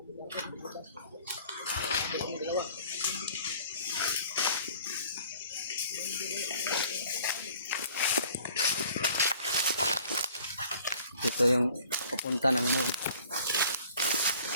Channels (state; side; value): inverted; both; correlation -0.53